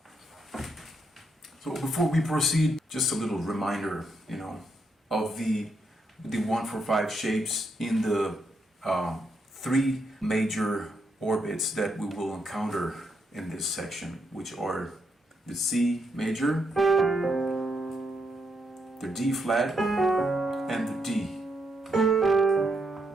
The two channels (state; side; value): normal; both; correlation 0.79